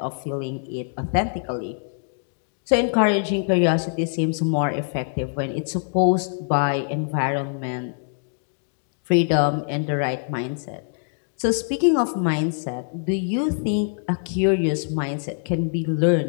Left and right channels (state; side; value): silent; right; digital silence